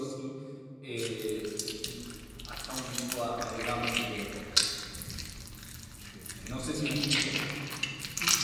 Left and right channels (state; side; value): identical; both; correlation 1.00